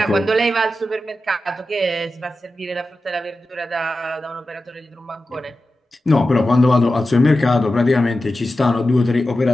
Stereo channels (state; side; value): normal; both; correlation 0.92